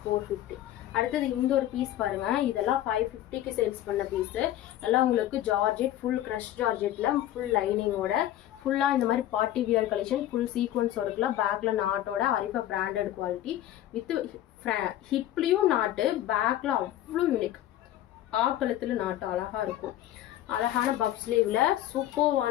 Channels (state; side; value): quieter; right; 13.2 dB